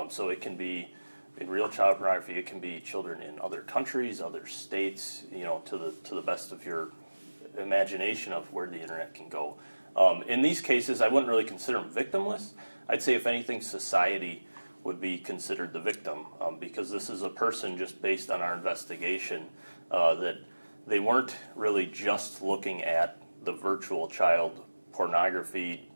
So it can be in real child pornography, it can be children in other countries, other states, to the best of your imagination of where the internet can go. In these cases, I wouldn't really consider them victimless. I'd say, if anything, society would be considered the victim, because this is a person, just based on our investigation, that they weren't really just looking at the virtual child pornography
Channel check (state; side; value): inverted; both; correlation -1.00